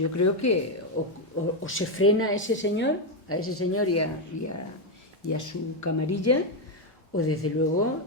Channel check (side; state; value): both; normal; correlation 0.04